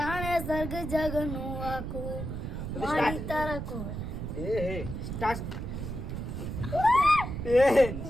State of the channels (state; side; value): noise; right; rumble, 5 dB below the sound